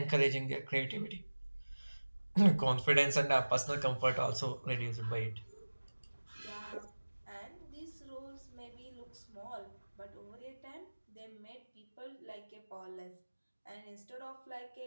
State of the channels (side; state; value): both; inverted; correlation -1.00